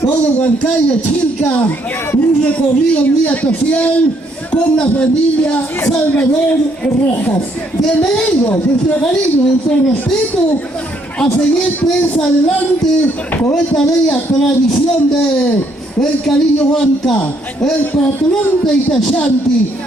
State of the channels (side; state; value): both; normal; correlation 0.70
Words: todo Huancayo, Chilca, un recorrido muy especial con la familia Salvador Rojas. Bienvenidos, nuestro cariño, nuestro respeto, a seguir pues adelante con esta bella tradición de el cariño Huanca, el patrón de Itachanti,